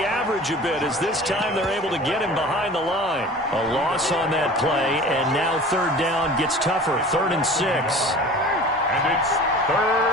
average a bit as this time they're able to get him behind the line. A loss on that play, and now 3rd down gets tougher. 3rd and 6. And it's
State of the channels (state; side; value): normal; both; correlation 0.41